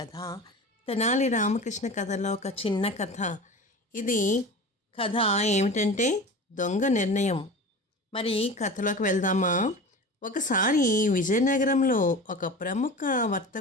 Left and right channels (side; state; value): both; normal; correlation 0.34